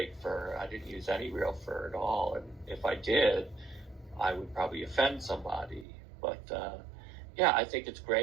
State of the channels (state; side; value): drops out; left; at 5.9 s